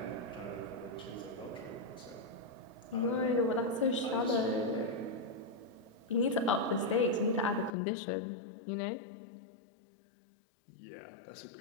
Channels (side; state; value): right; drops out; at 7.7 s